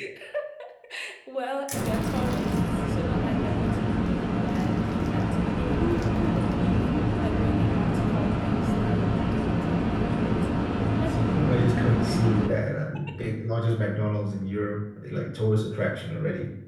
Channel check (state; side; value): identical; both; correlation 1.00